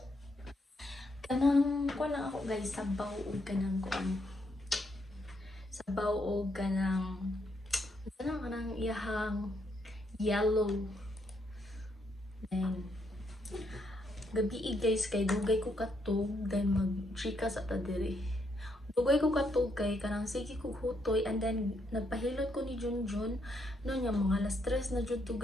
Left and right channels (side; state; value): both; normal; correlation 0.76